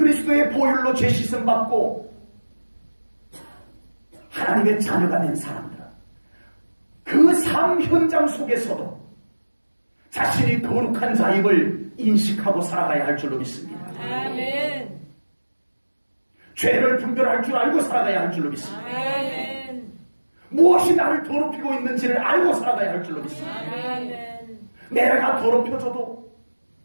보혈로 죄 씻음 받고 하나님의 자녀가 된 사람들은 그 삶 현장 속에서도 자신이 거룩한 자임을 인식하고 살아가야 할 줄로 믿습니다. 죄를 분별할 줄 알고 살아가야 할 줄로 믿습니다. 무엇이 나를 더럽히고 있는지를 알고 살아가야 할 줄로 믿습니다. 내가 더럽혀져도,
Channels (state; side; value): inverted; both; correlation -1.00